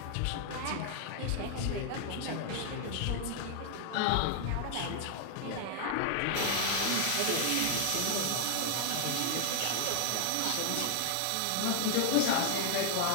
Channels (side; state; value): both; different; correlation 0.00